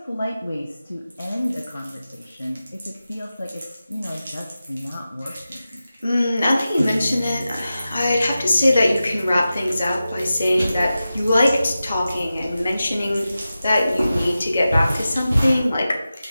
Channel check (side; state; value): both; inverted; correlation -0.93